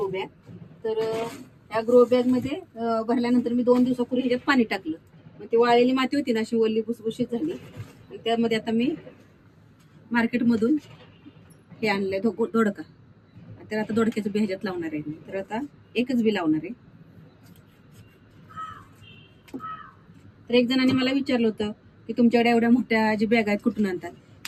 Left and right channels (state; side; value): identical; both; correlation 1.00